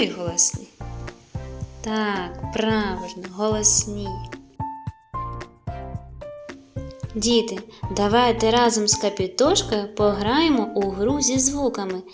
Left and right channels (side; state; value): both; identical; correlation 1.00